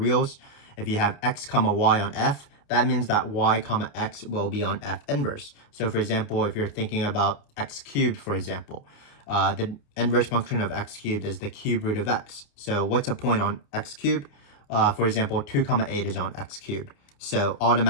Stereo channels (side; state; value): right; late; 29 ms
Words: if you have x comma y on f, that means that y comma x will be on f inverse. So for example, if you're thinking about x cubed, for example, the inverse function of x cubed is the cube root of x. So what's a point on x cubed? For example, 2 comma 8 is on x cubed. So